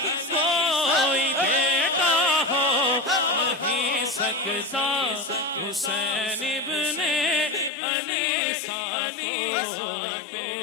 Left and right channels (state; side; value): drops out; right; at 7.7 s